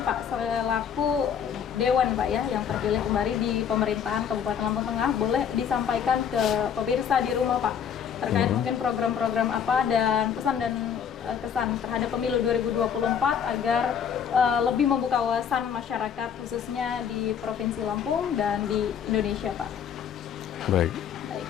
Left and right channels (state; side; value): quieter; right; 7.9 dB